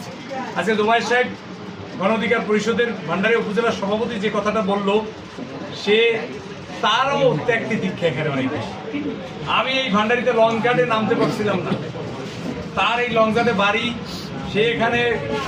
আজকে জুমায়ের সাহেব গণ অধিকার পরিষদের ভান্ডারী উপজেলার সভাপতি যে কথাটা বলল, সে তারও ত্যাগটি দীক্ষা এখানে অনেক বেশি। আমি এই ভান্ডারিতে লং গার্ডে নামতে পারছিলাম না, তার এই লং গার্ডে বাড়ি, সে এখানে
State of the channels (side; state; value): both; identical; correlation 1.00